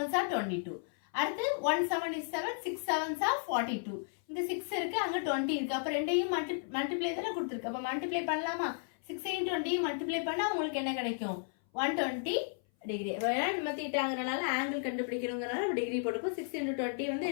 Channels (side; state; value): right; silent; 55 dB below the other